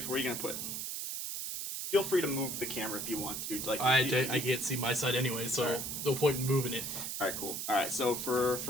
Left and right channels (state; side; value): noise; right; hiss, 4 dB below the sound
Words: Where are you gonna put? Feel free to move the camera if you want to. Like I can't see my side anyway, so right. No point in moving it. All right, cool. All right, so for